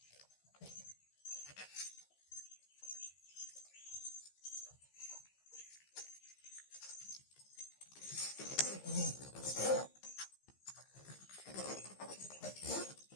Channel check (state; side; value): late; right; 15 ms